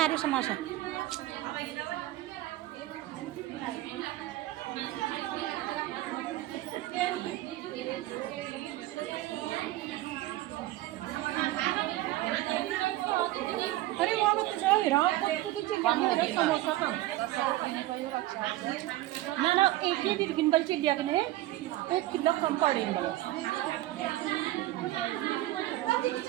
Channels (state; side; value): quieter; left; 16.3 dB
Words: रहे समोसा अरे वो मत जाओ रात को तू समोसा का ना एक ही गिनबल चिड़िया ने 1 किलो कम पड़े